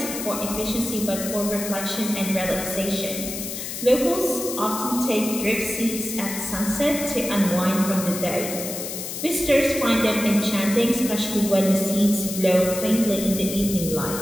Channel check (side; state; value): left; noise; hiss, 7 dB below the sound